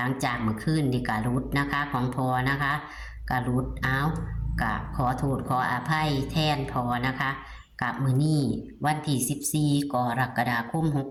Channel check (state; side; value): identical; both; correlation 1.00